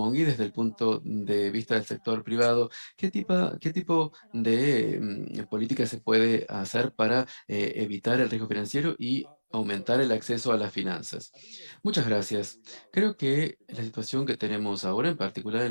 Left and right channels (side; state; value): both; inverted; correlation -1.00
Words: desde el punto de vista del sector privado. Qué tipo de política se puede hacer para evitar el riesgo financiero y aumentar el acceso a las finanzas? Muchas gracias. Creo que la situación que tenemos ahora, en particular